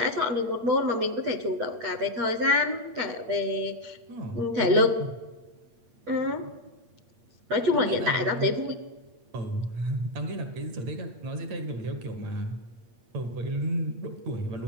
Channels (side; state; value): left; late; 8.6 ms